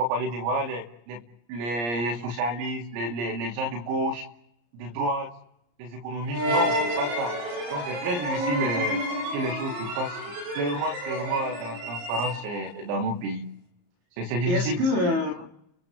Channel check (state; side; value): late; left; 34 ms